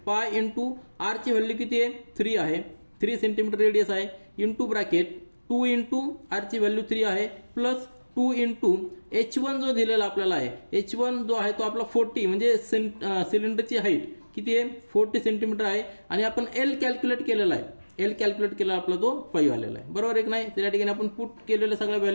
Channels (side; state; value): both; inverted; correlation -1.00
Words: पाय इंटू आर ची व्हॅल्यू किती आहे 3 आहे, 3 सेंटीमीटर रेडियस आहे, इंटू ब्रॅकेट 2 इंटू आर ची व्हॅल्यू 3 आहे प्लस 2 इंटू h1 जो दिलेला आपल्याला आहे, h1 जो आहे तो आपला 40 म्हणजे सिलेंडरची हाईट किती आहे 40 सेंटीमीटर आहे आणि आपण एल कॅल्क्युलेट केलेला आहे, एल कॅल्क्युलेट केला आपला तो 5 आलेला आहे बरोबर एक नाही. त्या ठिकाणी आपण पुट केलेल्या सगळ्या